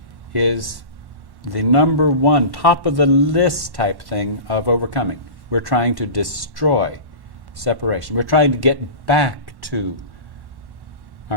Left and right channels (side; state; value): left; late; 1.1 ms